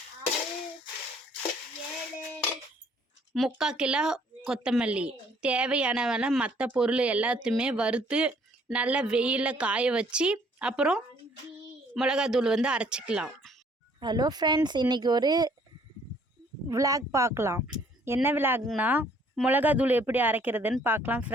முக்கால் கிலோ கொத்தமல்லி, தேவையானவன மற்ற பொருள் எல்லாத்தையுமே வறுத்து நல்லா வெயிலில் காய வச்சு அப்புறம் மிளகாத்தூள் வந்து அரைச்சிக்கலாம். ஹலோ ஃப்ரெண்ட்ஸ், இன்றைக்கி ஒரு விளாக் பார்க்கலாம். என்ன விளாக்னா மிளகாத்தூள் எப்படி அரைக்கிறதுன்னு பார்க்கலாம்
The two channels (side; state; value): both; normal; correlation 0.61